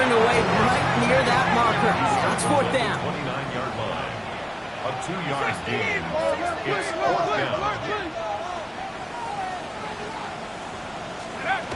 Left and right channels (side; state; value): both; identical; correlation 1.00